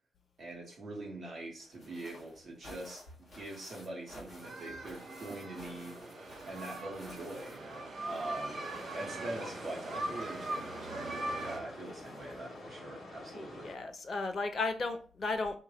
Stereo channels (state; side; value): normal; both; correlation 0.80